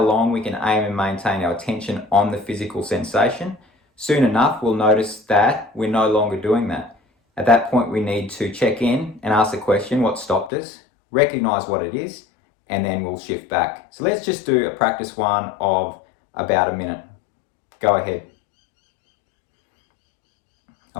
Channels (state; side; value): drops out; right; at 10.5 s